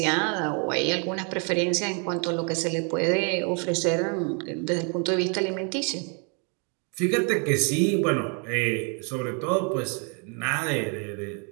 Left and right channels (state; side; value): quieter; left; 37.0 dB